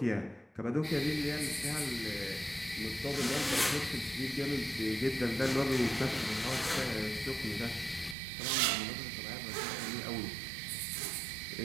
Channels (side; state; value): left; drops out; at 8.2 s